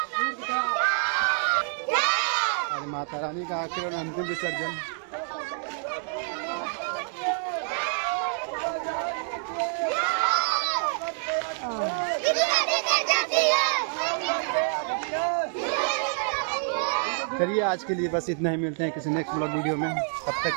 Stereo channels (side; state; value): left; silent; 58 dB below the other